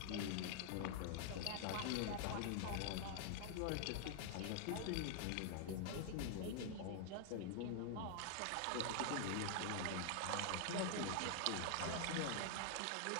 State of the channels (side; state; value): both; different; correlation 0.00